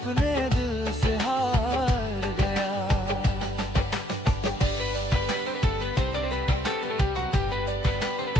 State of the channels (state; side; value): normal; both; correlation 0.69